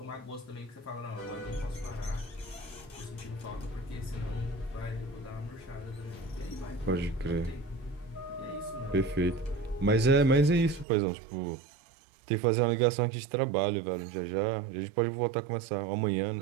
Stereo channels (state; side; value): drops out; left; at 10.9 s